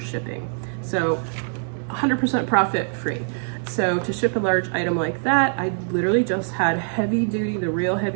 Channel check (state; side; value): silent; left; 58 dB below the other